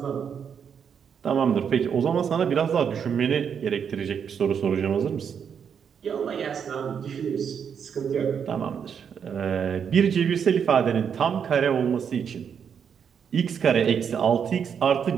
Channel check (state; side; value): quieter; left; 7.4 dB